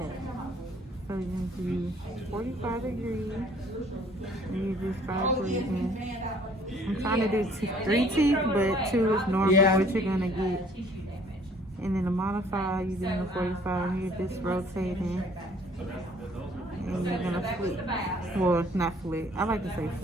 So you're going to do 45 degrees. And you do 5 breathing. I'm trying to do 3 teeth, but 2 is normally Yeah. what you're going to get. And then the modifier, you're doing the 45, and you're just rotating. And you're going to flip. Well, not flip. I like to say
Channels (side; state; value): both; normal; correlation 0.57